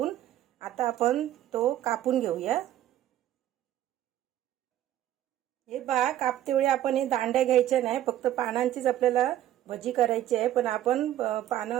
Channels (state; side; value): quieter; left; 12.7 dB